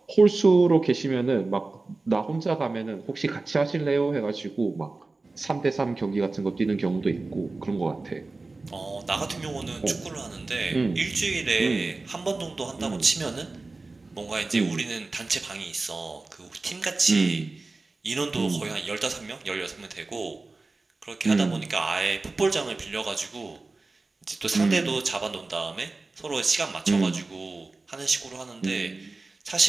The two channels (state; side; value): quieter; left; 3.5 dB